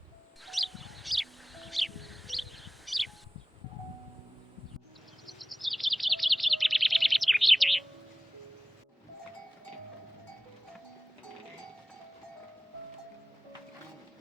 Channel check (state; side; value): normal; both; correlation 0.98